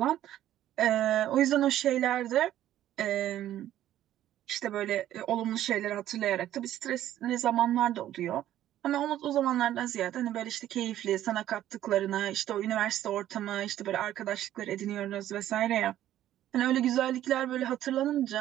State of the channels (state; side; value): quieter; left; 12.5 dB